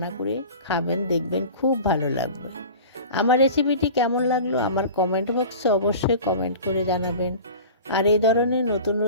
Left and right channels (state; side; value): inverted; both; correlation -0.38